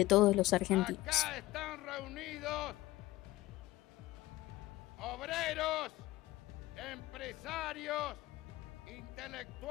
todos los argentinos. Acá están reunidos obreros, empresarios,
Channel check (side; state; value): right; quieter; 17.5 dB